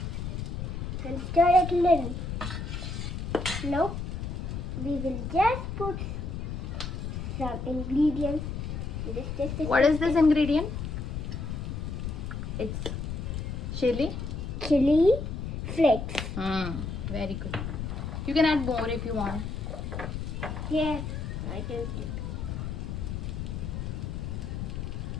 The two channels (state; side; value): noise; left; rumble, 4 dB below the sound